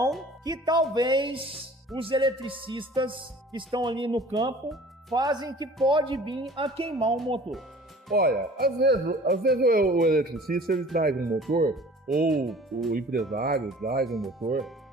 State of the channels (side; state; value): both; normal; correlation 0.47